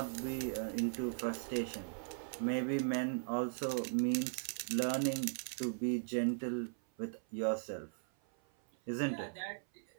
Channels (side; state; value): left; silent; 52 dB below the other